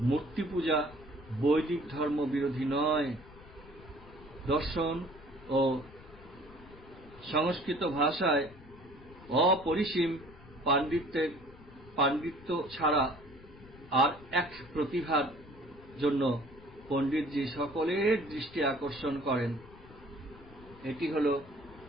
মূর্তি পূজা বৈদিক ধর্ম বিরোধী নয়। দর্শন ও সংস্কৃত ভাষায় অপরিসীম পাণ্ডিত্য ছাড়া আর এক প্রতিভার জন্য পণ্ডিতজি সকলের দৃষ্টি আকর্ষণ করেন। এটি হল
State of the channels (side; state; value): left; noise; rumble, 21 dB below the sound